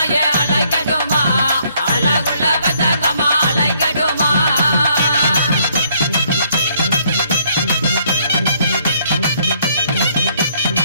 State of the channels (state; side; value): inverted; both; correlation -0.67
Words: அலைக்கட்டுமா அழகுள்ள பெத்தாக்கம்மா அலைக்கட்டுமா